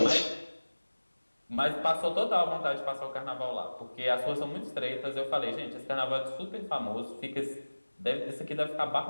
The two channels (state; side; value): inverted; both; correlation -1.00